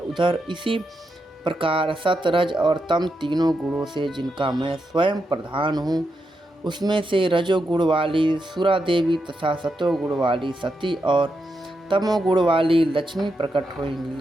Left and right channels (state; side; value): normal; both; correlation 0.85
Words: उधर इसी प्रकार सतरज और तम तीनों गुणों से जिनका मैं स्वयं प्रधान हूँ, उसमें से रजोगुण वाली सुरा देवी तथा सतोगुण वाली सती और तमोगुण वाली लक्ष्मी प्रकट